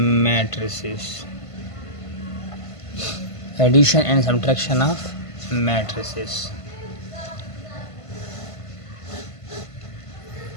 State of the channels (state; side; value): late; right; 1.5 ms